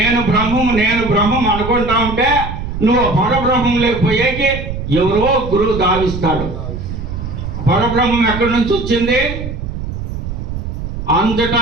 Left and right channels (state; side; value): noise; right; rumble, 6 dB below the sound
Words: బ్రహ్మం అనుకుంటా ఉంటే నువ్వు పరబ్రహ్మం లేకపోయేకి ఎవరో గురువు దావిస్తాడు. పరబ్రహ్మం ఎక్కడి నుంచి వచ్చింది? అంతటా